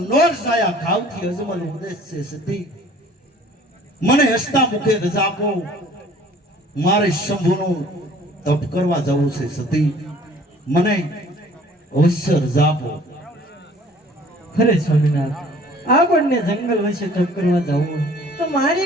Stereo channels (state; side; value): normal; both; correlation 0.52